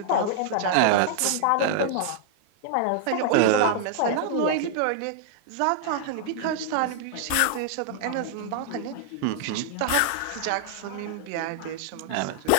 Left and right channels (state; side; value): different; both; correlation -0.01